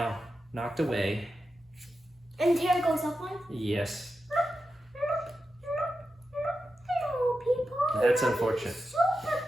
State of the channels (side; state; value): both; normal; correlation 0.90